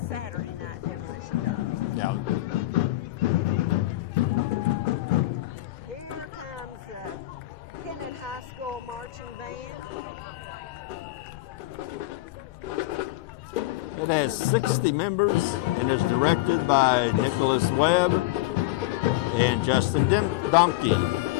night demolition derby. Yeah. Here comes the Kennett High School Marching Band. It has 60 members and is directed by Nicholas Webb and Justin Donkey.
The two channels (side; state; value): right; quieter; 17.5 dB